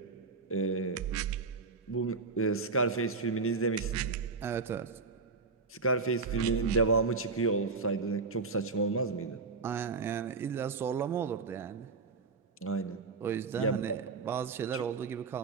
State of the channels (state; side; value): quieter; left; 4.4 dB